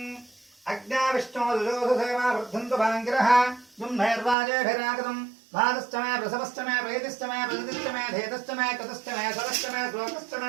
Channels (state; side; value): drops out; left; at 4.4 s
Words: अग्नाविष्णो दुजोधसेवा वर्धन्तु भाङ्गिरः दुम्नैर्वाजेभिरागतम् भातश्च मे प्रसवश्च मे प्रेतिश्च मे प्रजतिश्च मे धेतश्च मे कृतश्च मे सरश्च मे श्लोकश्च